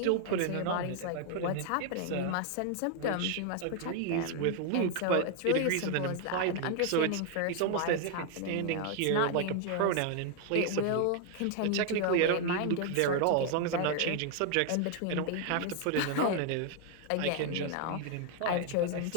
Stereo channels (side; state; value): both; different; correlation 0.00